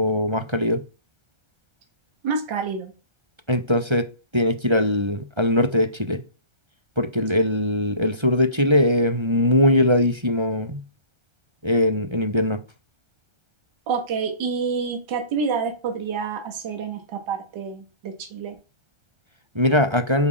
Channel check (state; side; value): late; left; 1.3 ms